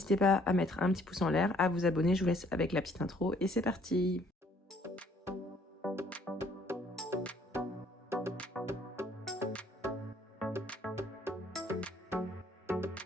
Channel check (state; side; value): normal; both; correlation 0.62